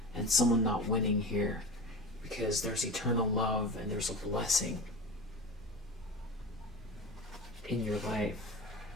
and someone not winning here, because there's eternal love and there's a blessing in your life,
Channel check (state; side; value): normal; both; correlation 0.30